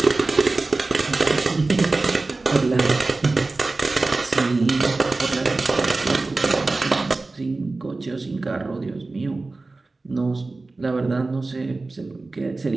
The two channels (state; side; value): quieter; left; 3.4 dB